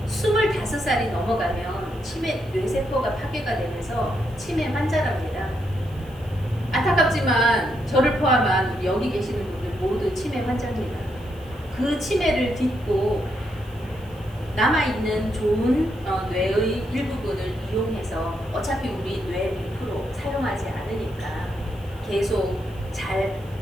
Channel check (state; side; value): noise; right; hiss, 27 dB below the sound